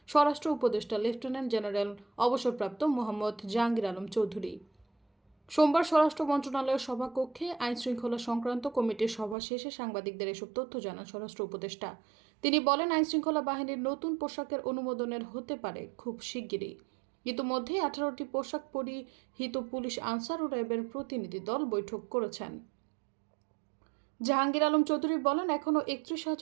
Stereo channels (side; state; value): left; drops out; at 9.3 s